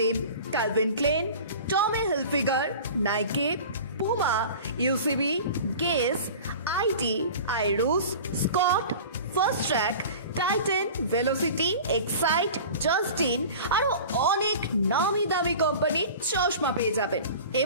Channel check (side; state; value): both; inverted; correlation -0.38